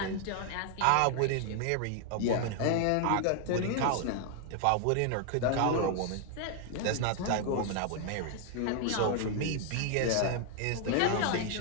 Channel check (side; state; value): both; different; correlation 0.00